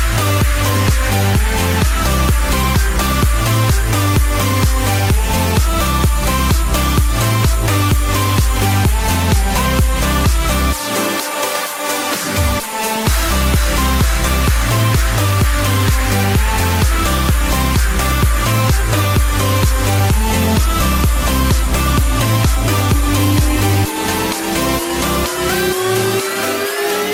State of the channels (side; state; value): both; identical; correlation 1.00